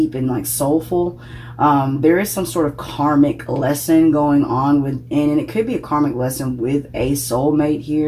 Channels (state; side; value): identical; both; correlation 1.00